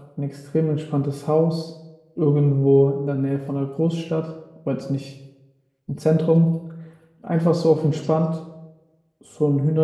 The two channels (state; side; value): identical; both; correlation 1.00